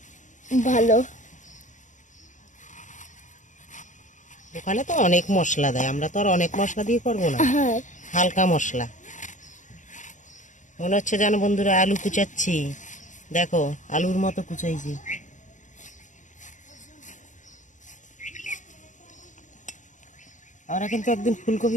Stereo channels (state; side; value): late; right; 0.36 ms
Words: ভালো। দোকানে তো অনেক মশলা দেয়, আমরা তো আর অনেক মশলা দিয়ে করবো না, হ্যাঁ, হালকা মশলা। মনে হচ্ছে যেন বন্ধুরা আলু কুচাচ্ছি, দেখো আলুর মতো কুচাইছি। আমরা কিন্তু একদিন